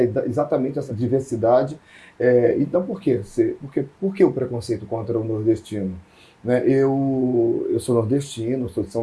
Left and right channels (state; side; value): identical; both; correlation 1.00